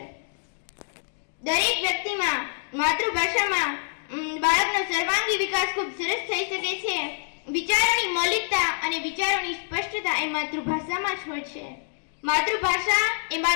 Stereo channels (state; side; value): silent; right; digital silence